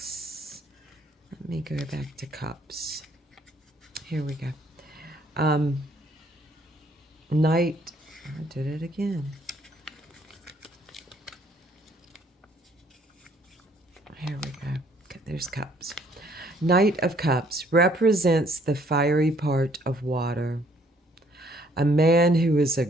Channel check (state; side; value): normal; both; correlation 0.64